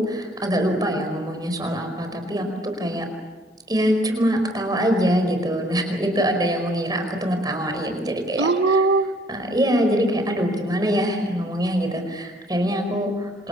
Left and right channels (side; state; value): both; normal; correlation 0.60